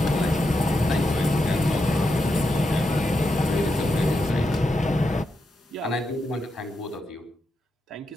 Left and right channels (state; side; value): normal; both; correlation 0.85